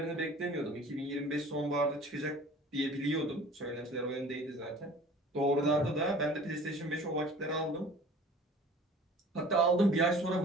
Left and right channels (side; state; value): both; normal; correlation 0.46